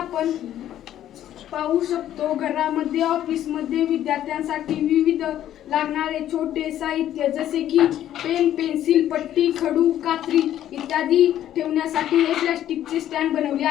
पाहू शकतो घरामध्ये ऑफिसमध्ये विद्यार्थ्यांसाठी विविध लागणारे छोटे साहित्य जसे की पेन पेन्सिल पट्टी खडू कात्री इत्यादी ठेवण्यासाठी हे प्लास्टिकचे स्टँड बनवले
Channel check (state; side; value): quieter; right; 11.8 dB